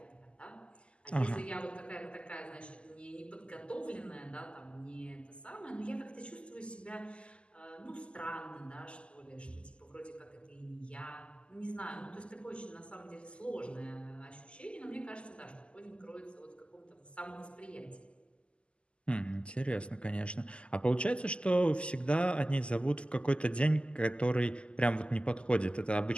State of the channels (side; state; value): right; late; 0.053 ms